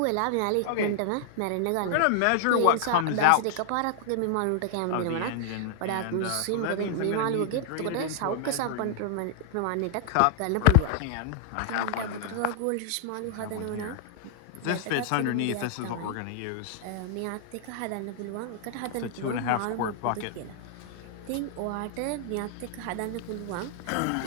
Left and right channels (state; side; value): different; both; correlation -0.01